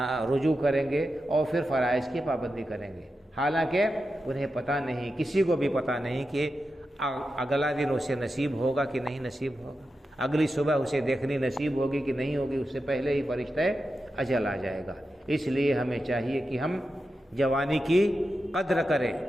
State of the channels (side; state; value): both; normal; correlation 0.90